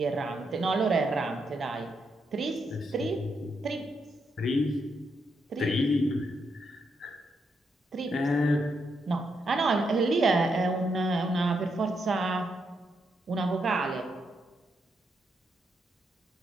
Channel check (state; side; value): normal; both; correlation 0.80